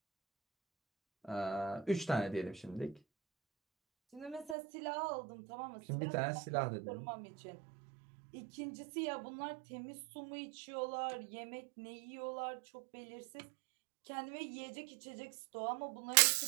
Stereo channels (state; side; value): drops out; left; at 4.5 s